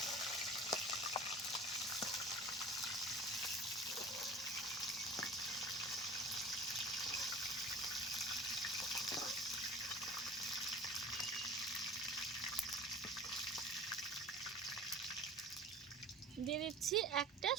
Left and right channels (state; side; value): normal; both; correlation 0.41